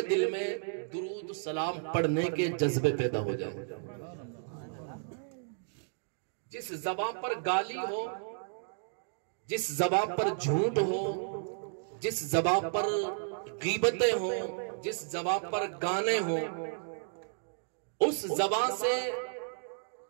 دل میں درود و سلام پڑھنے کے جذبے پیدا ہو جائے۔ جس زبان پر گالی ہو، جس زبان پر جھوٹ ہو، جس زبان پر غیبتیں ہوں، جس زبان پر گانے ہوں، اس زبان سے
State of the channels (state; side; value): silent; left; digital silence